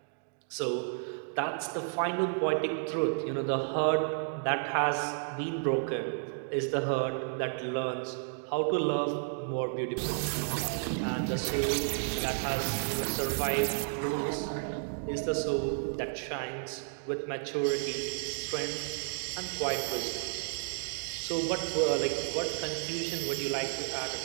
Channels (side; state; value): left; silent; digital silence